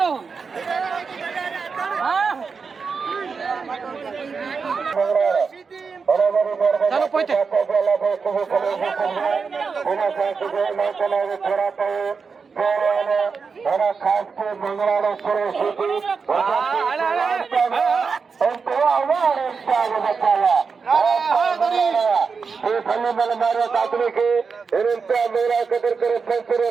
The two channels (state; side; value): quieter; left; 5.2 dB